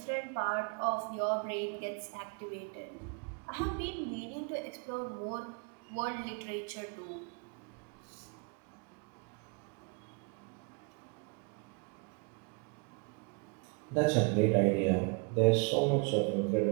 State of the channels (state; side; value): quieter; left; 32.4 dB